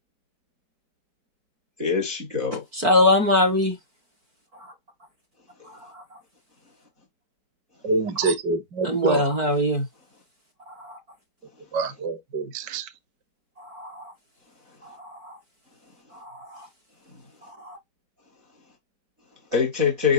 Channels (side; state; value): left; late; 4.5 ms